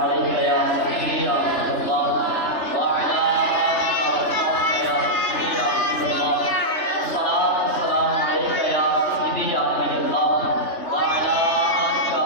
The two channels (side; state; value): right; late; 3.3 ms